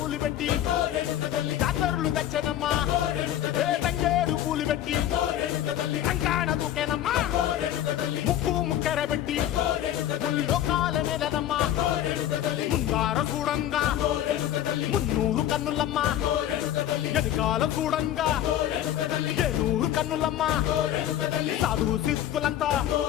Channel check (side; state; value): right; quieter; 11.8 dB